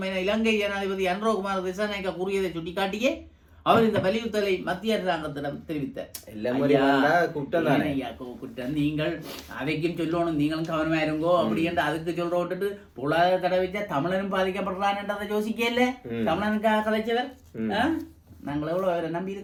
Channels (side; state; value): both; identical; correlation 1.00